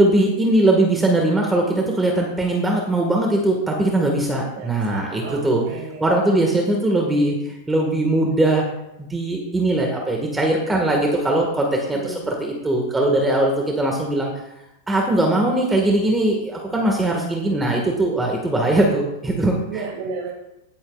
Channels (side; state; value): both; normal; correlation 0.52